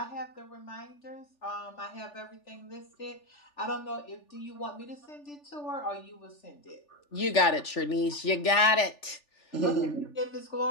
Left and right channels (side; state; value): right; late; 3.4 ms